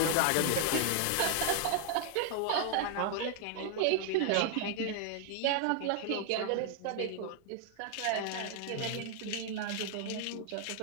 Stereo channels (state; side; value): different; both; correlation 0.00